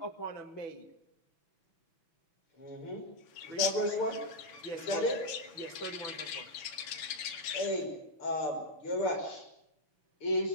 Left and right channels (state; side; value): late; right; 7.1 ms